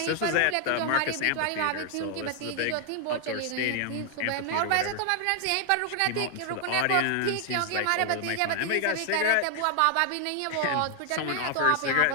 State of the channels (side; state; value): both; different; correlation 0.00